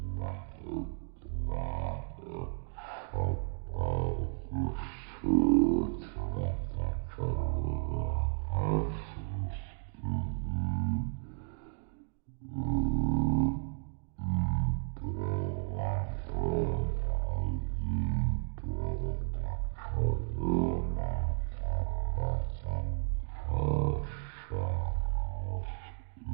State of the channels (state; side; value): silent; left; 55 dB below the other